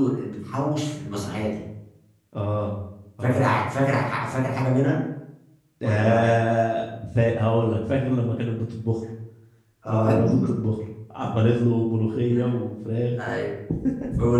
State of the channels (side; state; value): both; identical; correlation 1.00